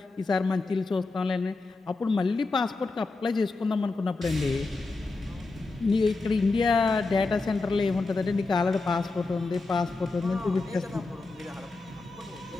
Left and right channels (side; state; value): right; quieter; 3.6 dB